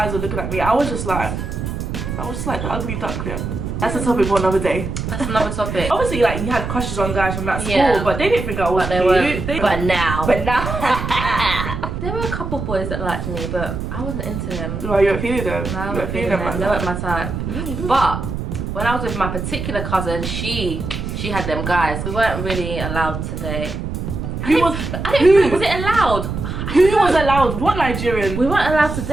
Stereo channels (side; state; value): right; noise; rumble, 5 dB below the sound